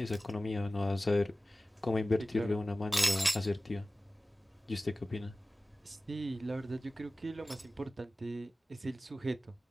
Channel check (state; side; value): normal; both; correlation 0.96